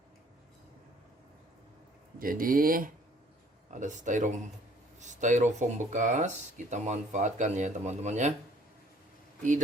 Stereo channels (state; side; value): normal; both; correlation 0.58